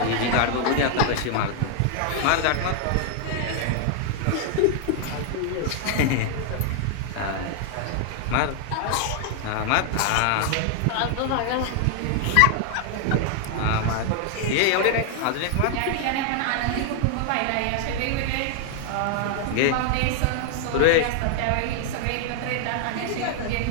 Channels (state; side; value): different; both; correlation 0.00